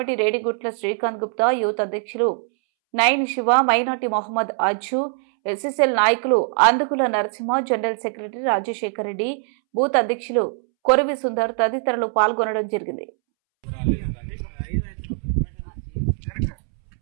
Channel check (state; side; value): silent; left; 64 dB below the other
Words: రేడిగుట్ల శ్రీకాంత్ గుప్తా, యూత్ అధ్యక్షులు నయన్ శివ, మైనార్టీ మొహమ్మద్ అజ్జు, ఎస్ఎస్ఎల్ నాయకులు Andukula Narasimha, general secretary Rajasekhar Reddy, booth అధ్యక్షులు కొరవి సుందర్ తదితరులు పాల్గొనడం జరిగింది.